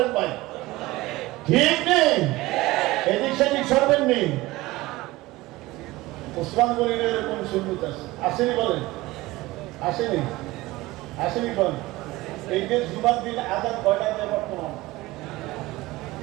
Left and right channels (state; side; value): quieter; left; 19.3 dB